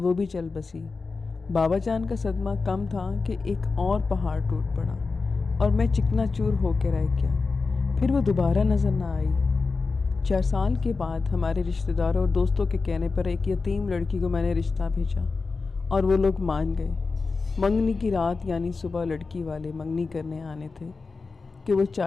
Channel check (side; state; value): right; quieter; 4.2 dB